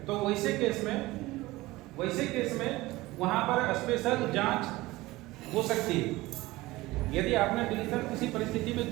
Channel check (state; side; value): quieter; left; 19.4 dB